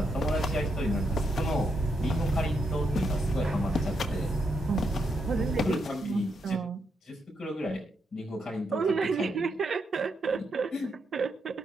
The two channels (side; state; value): both; normal; correlation 0.80